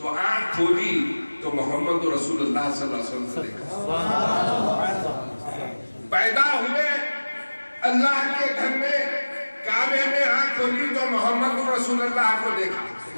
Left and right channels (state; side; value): inverted; both; correlation -1.00